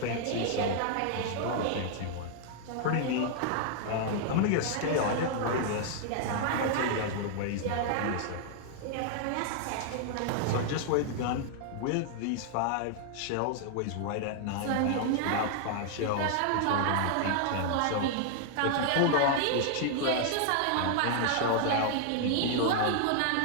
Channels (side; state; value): both; different; correlation 0.00